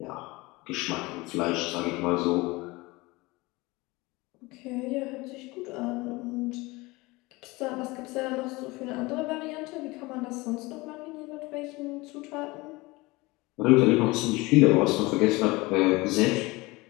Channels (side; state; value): right; quieter; 22.7 dB